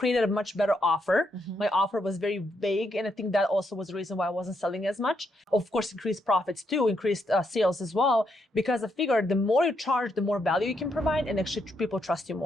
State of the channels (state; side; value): normal; both; correlation 0.78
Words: a much better offer. My offer was very vague, and I think that also was the reason why I wasn't selling as much. Of course, increased profits too, increased sales as well, because I figured the more you charge, the more value you can provide, and actually people trust you